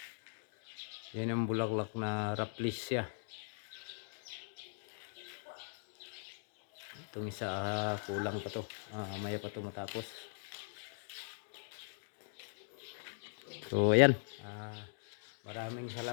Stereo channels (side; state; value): right; silent; digital silence